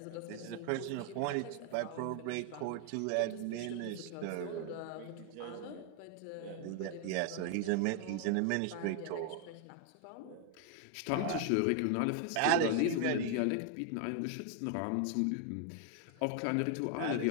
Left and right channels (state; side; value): different; both; correlation 0.00